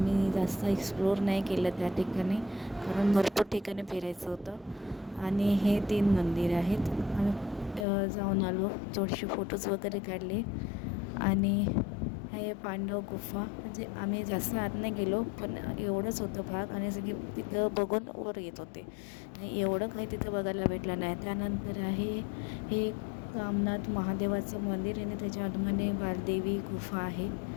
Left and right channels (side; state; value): right; drops out; at 7.9 s